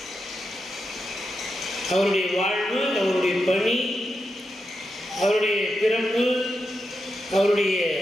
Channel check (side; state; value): both; normal; correlation 0.86